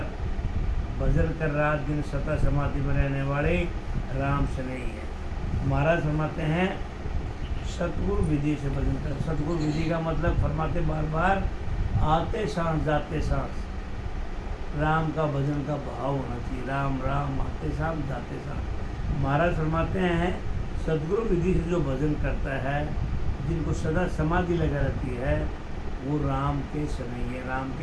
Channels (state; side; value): identical; both; correlation 1.00